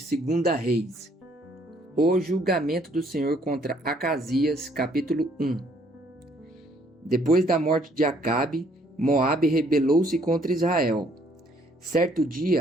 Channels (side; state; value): both; normal; correlation 0.64